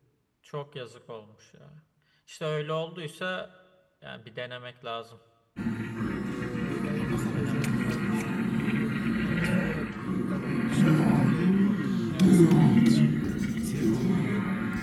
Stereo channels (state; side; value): identical; both; correlation 1.00